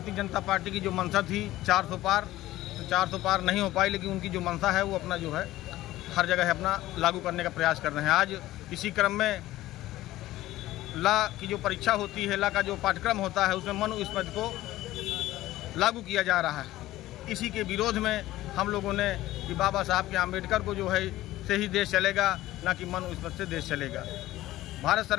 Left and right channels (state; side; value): quieter; right; 15.9 dB